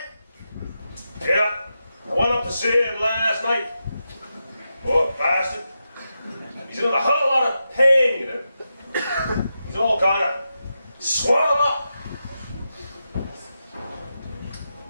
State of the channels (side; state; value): both; inverted; correlation -0.88